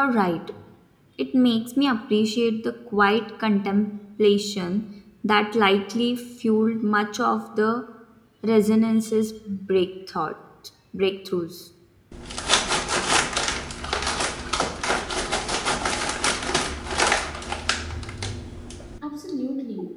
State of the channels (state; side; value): identical; both; correlation 1.00